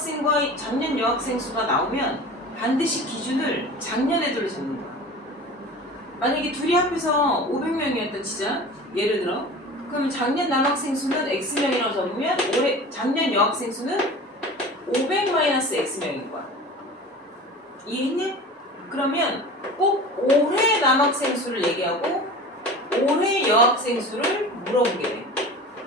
작년 여학생 수가 나오면 반드시 기준을 작년 애들로 잡는 거야. 만약에 둘이 합해서 500명이었다 치자. 예를 들어. 그러면 작년 남학생 수는 X명이라고 잡으면 올해 작년 여학생 수는 500-X명인 거야. 이해했냐? 그러면 꼭 올해 남학생 수를 얘기하고 올해 여학생 수를 물어보게 돼.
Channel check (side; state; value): both; normal; correlation 0.37